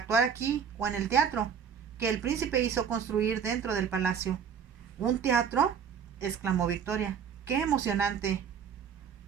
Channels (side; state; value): left; quieter; 7.5 dB